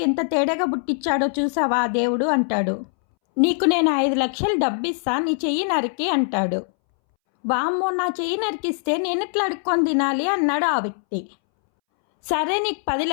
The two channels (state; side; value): silent; right; 63 dB below the other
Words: ఎంత తేడాగా పుట్టించాడో చూసావా ఆ దేవుడు అంటాడు. నీకు నేను 5 లక్షలు డబ్బిస్తా, నీ చెయ్యి నరికి అంటాడు. వామ్మో, నా చెయ్యి నరికిస్తే నేనెట్లా అడుక్కొని తినాలి అన్నాడు ఆ వ్యక్తి. సరే, నీకు 10